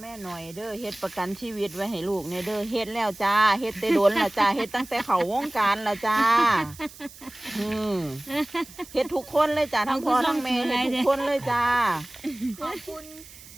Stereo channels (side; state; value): right; noise; hiss, 19 dB below the sound